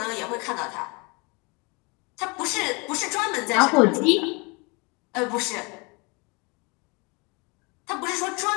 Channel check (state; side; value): quieter; right; 29.3 dB